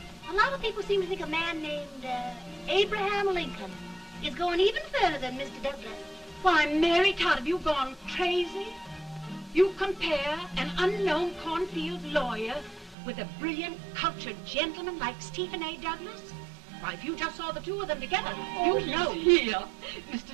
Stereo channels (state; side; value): drops out; left; at 13.0 s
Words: A lot of people seem to think a man named Abraham Lincoln is going even further than Mr. Douglas. Why, Mary Todd, have you gone crazy? You compare an unknown cornfield lawyer with a brilliant, cultured gentleman like Stephen A. Douglas? Why, if you just saw the two of them together, Oh, you'd know. Here.